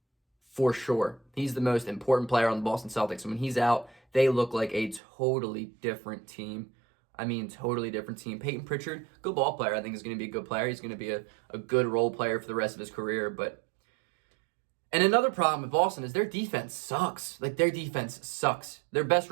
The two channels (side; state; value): left; drops out; at 5.0 s